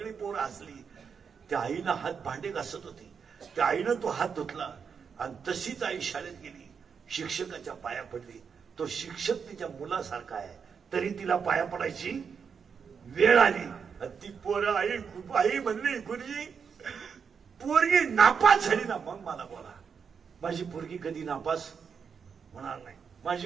पोरं हसली. त्या आईनं हात भांडे घासत होती. त्या आईनं तो हात धुतला आणि तशीच आई शाळेत गेली. शिक्षकाच्या पाया पडली. तो शिक्षक तिच्या मुलासारखा आहे, तरी तिला पाया पडायची वेळ आली. ती पोरं आई म्हणली गुरुजी पोरगी नापास झाली ना मग मला बोला. माझी पोरगी कधी नापास होणार नाही.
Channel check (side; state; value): left; quieter; 6.4 dB